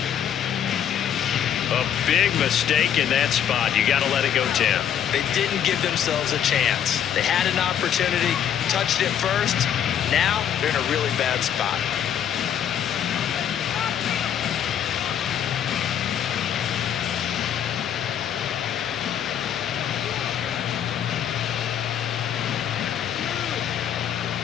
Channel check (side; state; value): right; quieter; 9.4 dB